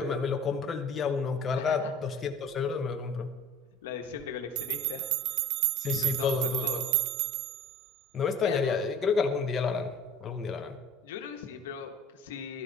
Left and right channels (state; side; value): normal; both; correlation 0.45